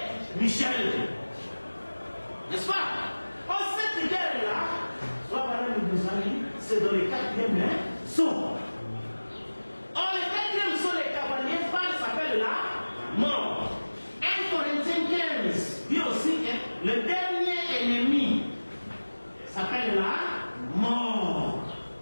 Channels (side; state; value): both; inverted; correlation -1.00